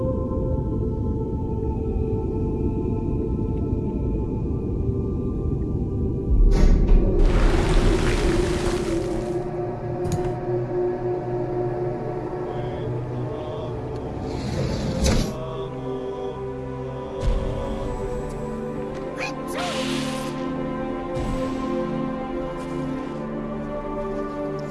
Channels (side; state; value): both; identical; correlation 1.00